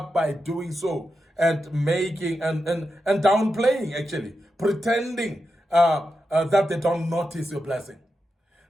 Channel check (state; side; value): normal; both; correlation 0.88